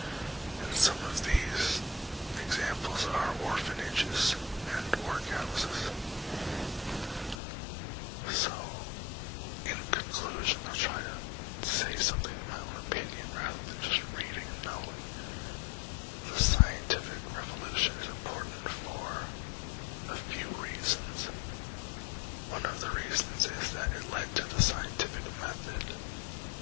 And some of these examples are orphanages and workhouses. So, in conclusion, I'll try to say something in my own opinion rather than just reading and knowing. The scientific revolution is important for a few reasons. One of the reasons is that it led to the scientific method,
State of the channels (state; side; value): drops out; right; at 7.4 s